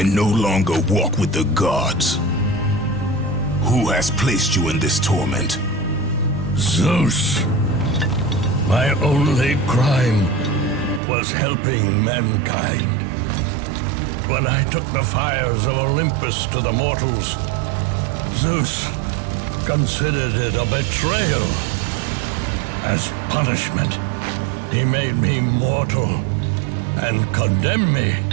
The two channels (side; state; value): left; drops out; at 11.0 s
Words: no longer walk with the gods. Who has placed you in this torment? Zeus. My only crime was helping mankind. When I took the fires of Olympus to the mortals, Zeus considered it a betrayal. As punishment, he made me mortal and condemned me